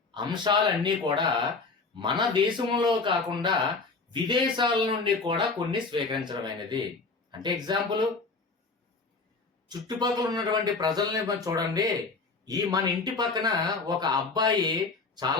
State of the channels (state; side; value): quieter; right; 4.1 dB